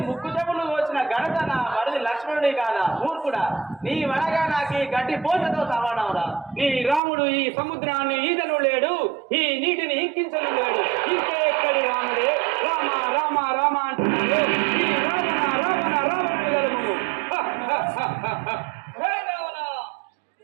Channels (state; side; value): drops out; left; at 7.0 s